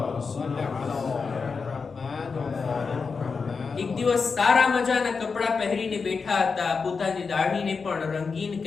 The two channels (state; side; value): quieter; right; 5.0 dB